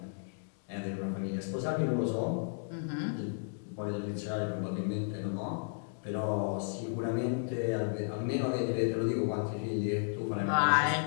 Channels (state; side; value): silent; right; digital silence